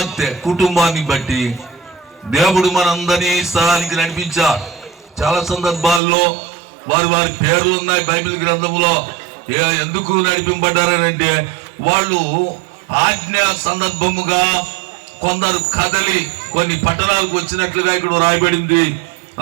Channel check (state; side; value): drops out; left; at 6.0 s